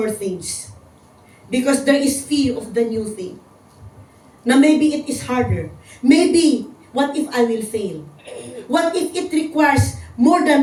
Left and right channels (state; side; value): identical; both; correlation 1.00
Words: things. Because there is fear of the new thing. Na maybe it is harder. Maybe, what if I will fail? What if it requires more